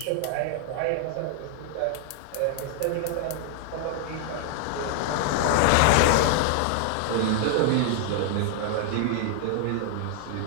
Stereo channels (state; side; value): different; both; correlation 0.00